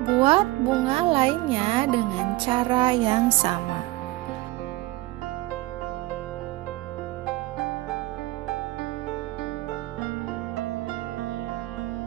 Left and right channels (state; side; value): quieter; left; 19.0 dB